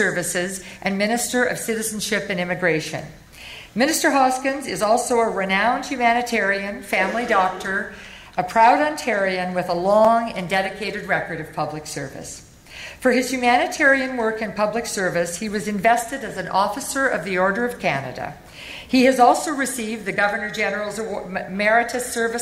and Minister of Citizenship and Immigration. Minister Hoskins is also a renowned humanitarian, family doctor, a proud Ontarian with a long and dedicated record of public service. For his humanitarian work and public service, he was invested as an Officer of the Order of Canada. He has also received the Governor-General's Meritorious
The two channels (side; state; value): both; identical; correlation 1.00